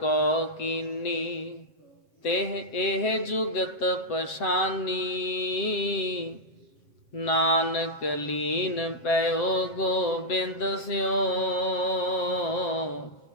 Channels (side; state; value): right; late; 7.8 ms